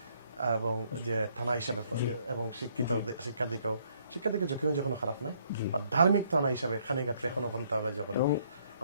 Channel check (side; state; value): both; inverted; correlation -0.67